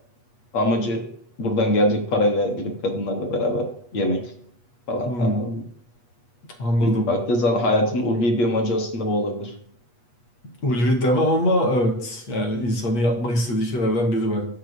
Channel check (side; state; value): right; late; 8.3 ms